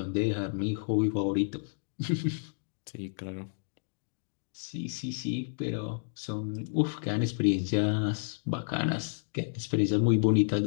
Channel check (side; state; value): right; silent; digital silence